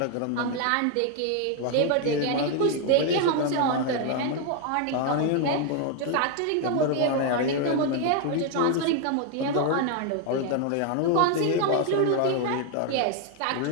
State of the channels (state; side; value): different; both; correlation 0.01